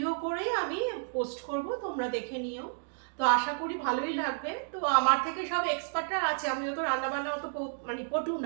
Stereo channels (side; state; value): left; silent; digital silence